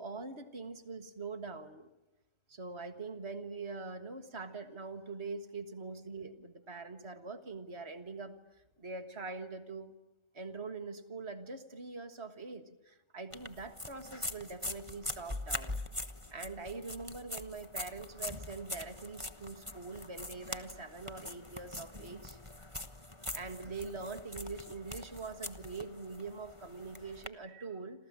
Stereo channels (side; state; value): left; late; 1.5 ms